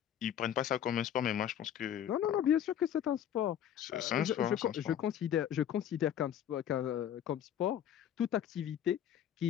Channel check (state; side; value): quieter; right; 10.0 dB